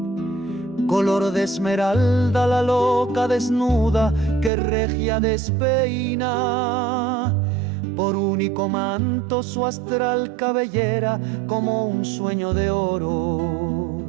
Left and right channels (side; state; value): left; drops out; at 4.5 s